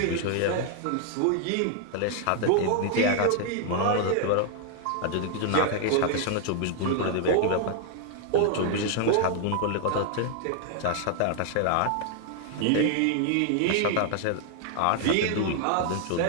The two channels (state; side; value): different; both; correlation 0.00